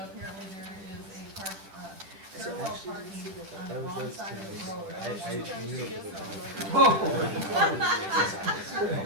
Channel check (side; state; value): left; late; 10 ms